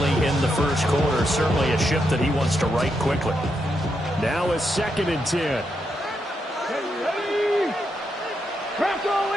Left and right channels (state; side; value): normal; both; correlation 0.82